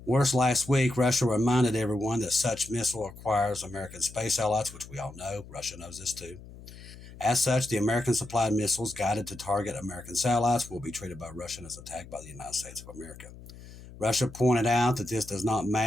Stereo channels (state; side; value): noise; left; hum, 17 dB below the sound